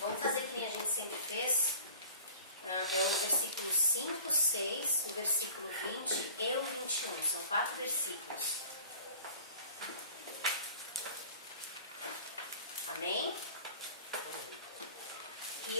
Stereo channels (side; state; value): both; inverted; correlation -0.45